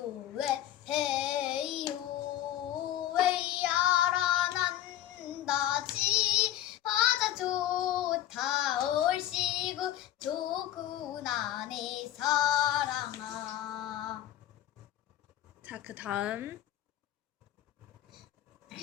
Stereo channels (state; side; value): quieter; right; 12.6 dB